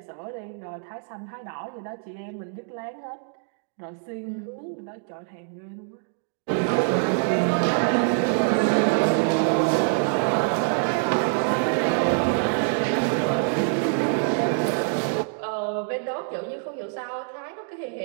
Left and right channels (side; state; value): left; silent; 59 dB below the other